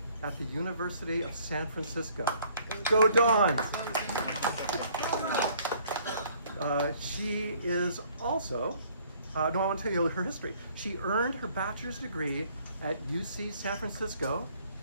at the University of San Francisco. Go Dons! She is also, I want to tell you her history. She earned her bachelor's degree at UC Santa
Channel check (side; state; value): both; inverted; correlation -0.60